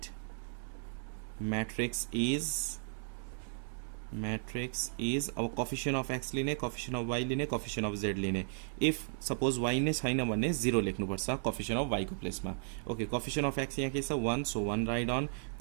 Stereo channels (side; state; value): left; silent; digital silence